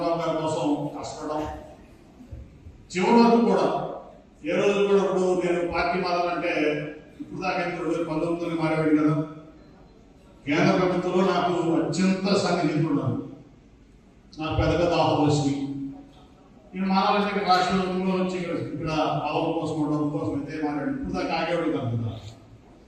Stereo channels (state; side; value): identical; both; correlation 1.00